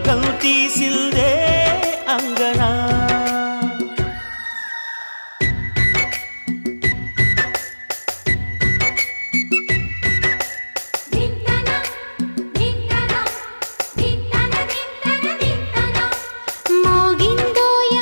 తీసిందే అంగనా మోగిందో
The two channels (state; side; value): inverted; both; correlation -1.00